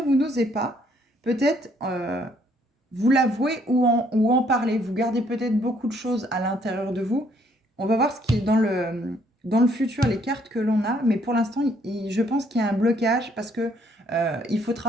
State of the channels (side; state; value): both; normal; correlation 0.66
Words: vous n'osez pas, peut-être, vous l'avouer ou en parler. Vous gardez peut-être beaucoup de choses à l'intérieur de vous. On va voir ce qui est dans le futur, les cartes que l'on a. Mais pour l'instant, je pense qu'il y a un blocage parce que il faut